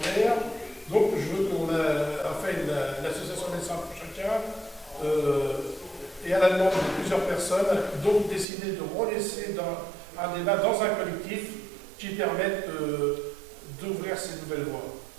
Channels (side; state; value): left; drops out; at 8.5 s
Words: Donc je veux qu'on a fait l'association Médecins pour chacun et à la demande de plusieurs personnes, donc décidé de relaisser un débat dans un collectif qui permette d'ouvrir ces nouvelles voies.